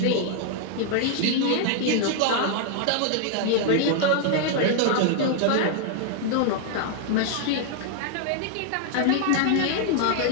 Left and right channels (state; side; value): different; both; correlation 0.00